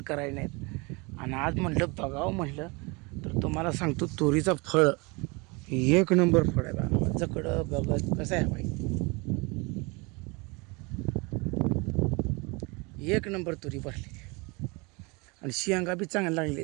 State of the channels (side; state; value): left; quieter; 27.8 dB